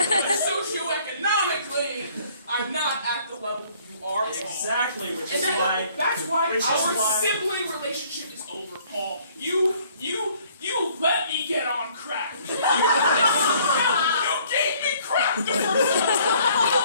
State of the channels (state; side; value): inverted; both; correlation -0.59